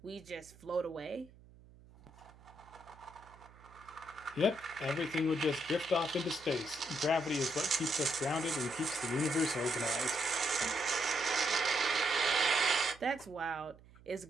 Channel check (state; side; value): noise; right; hum, 23 dB below the sound